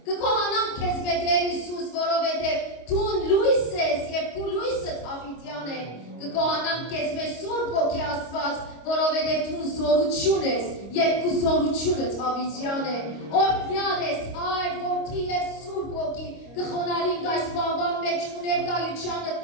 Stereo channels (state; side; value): late; right; 25 ms